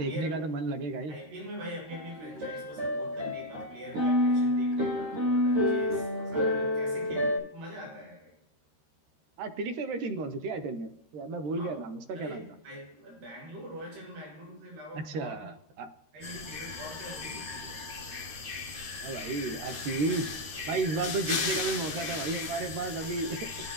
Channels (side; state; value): left; late; 13 ms